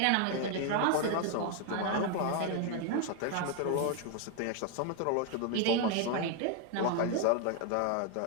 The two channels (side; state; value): both; different; correlation 0.01